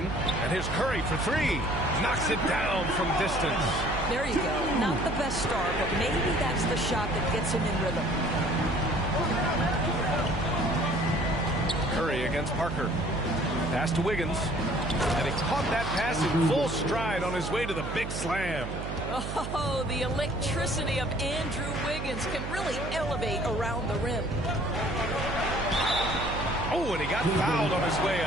and here's Curry for three. Knocks it down from distance. There you go. Not the best start, but maybe that's the shot that gets him in rhythm. Curry against Parker. Pass to Wiggins. And he caught that pass in full stride on his way to the big slam. Oh, the electricity of Andrew Wiggins can really elevate around the rim. Oh, and he got fouled on his way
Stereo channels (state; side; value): noise; right; hum, 6 dB below the sound